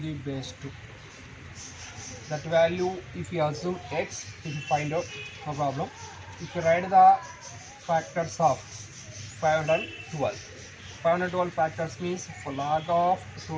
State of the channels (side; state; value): both; identical; correlation 1.00